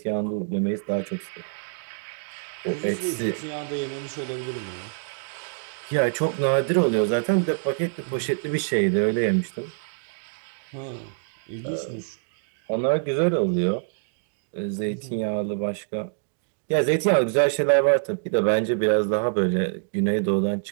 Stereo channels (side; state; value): left; silent; digital silence